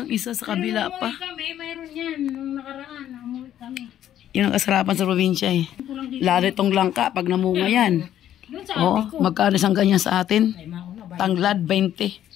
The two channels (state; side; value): quieter; right; 11.3 dB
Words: isa sa kabila Pero pa. nung kami, mayroon yan. Nung nakaraan, namuwi kami. Yun ang kasarapan sa probinsya eh. Kulang dito. Lalo itong langka pag namunga yan. Doon sa Oo, ate ko. magkano isang ganyan sa atin? Ay, mauna ba? Tanglad, 20.